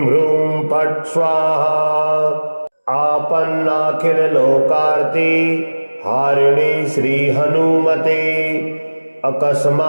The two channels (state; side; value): inverted; both; correlation -1.00